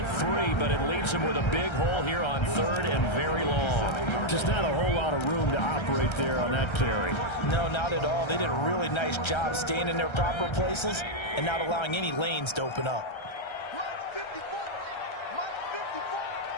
3, but it leaves him with a big hole here on 3rd and very long. Just not a whole lot of room to operate there on that carry. No, not at all. They did a really nice job staying in their proper places and not allowing any lanes to open up. Mike 54. Mike 54.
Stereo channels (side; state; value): right; late; 1.3 ms